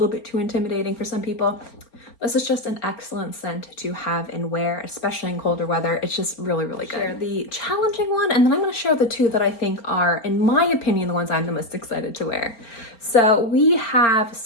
bit too intimidating for some people, this is just an excellent scent to have and wear, especially in colder weather. It's just really, really good. Share the challenging one, and then I'm going to share the two that I think are, in my opinion, the ones I'm the most excited to wear. So we have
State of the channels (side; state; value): right; late; 4.3 ms